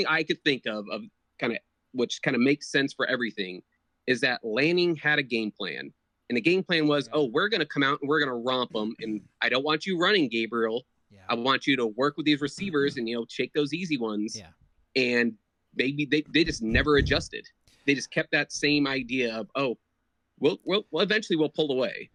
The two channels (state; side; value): identical; both; correlation 1.00